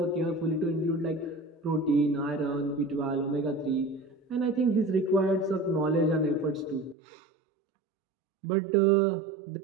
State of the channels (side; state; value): left; drops out; at 7.0 s